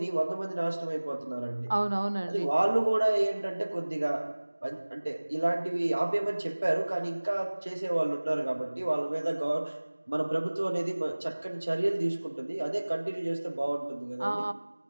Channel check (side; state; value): both; inverted; correlation -1.00